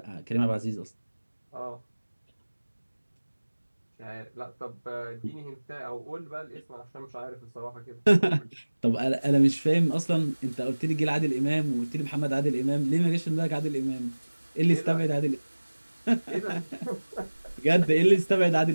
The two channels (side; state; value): both; inverted; correlation -1.00